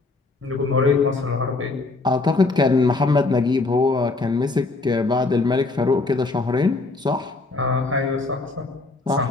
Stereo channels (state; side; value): quieter; right; 3.5 dB